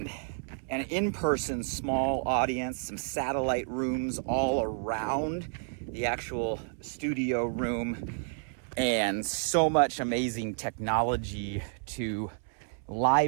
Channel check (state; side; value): silent; left; 58 dB below the other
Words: an in-person small audience, some satellite rooms all around the actual studio room, and so much amazing technology to